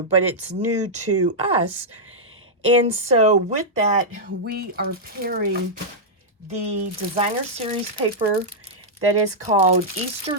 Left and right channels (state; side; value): normal; both; correlation -0.08